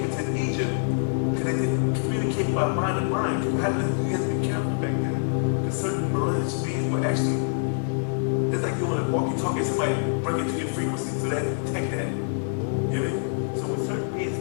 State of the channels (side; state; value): right; silent; digital silence